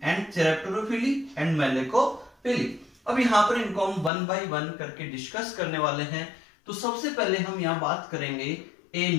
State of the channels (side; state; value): right; drops out; at 4.1 s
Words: and chiropterophily and malacophily. अब यहां पर इनको हम 1 बाय 1 करके डिस्कस करने वाले हैं। तो सबसे पहले हम यहां बात करेंगे